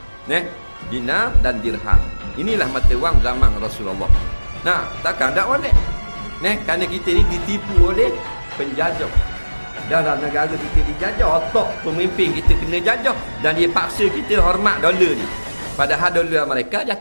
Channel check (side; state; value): both; inverted; correlation -1.00